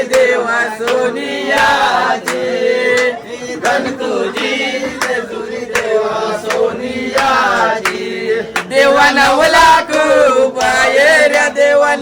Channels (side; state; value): both; identical; correlation 1.00